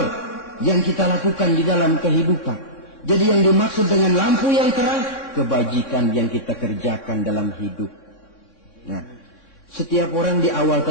yang kita lakukan di dalam kehidupan. Jadi yang dimaksud dengan lampu yang terang, kebajikan yang kita kerjakan dalam hidup. Nah, setiap orang di awal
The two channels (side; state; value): right; late; 3.6 ms